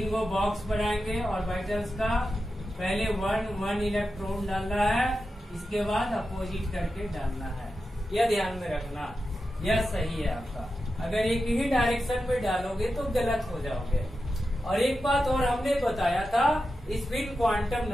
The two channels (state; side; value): normal; both; correlation 0.90